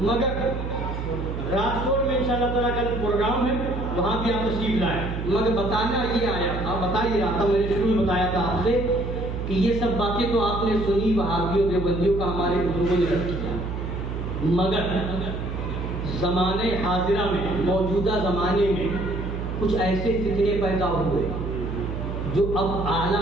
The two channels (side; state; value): right; noise; hum, 5 dB below the sound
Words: مگر راجکوٹ میں انشاءاللہ تعالیٰ کا پروگرام ہے، وہاں بھی آپ تشریف لائیں۔ مگر بتانا یہ آیا تھا، بتا ہی رہا تھا، میں نے شروع میں بتایا تھا آپ سے کہ یہ سب باتیں تو آپ نے سنی، وہابیوں دیوبندیوں کا ہمارے بزرگوں نے رکھ کیا، مگر زمانے حاضرہ میں، موجودہ زمانے میں کچھ ایسے فتنے پیدا ہوئے جو اب